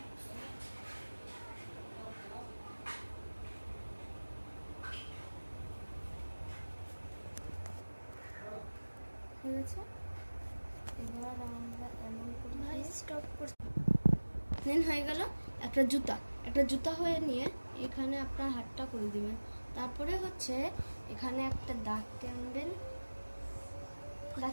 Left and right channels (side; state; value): both; inverted; correlation -1.00